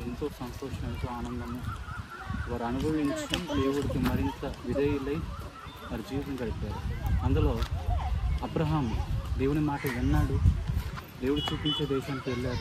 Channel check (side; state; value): both; identical; correlation 1.00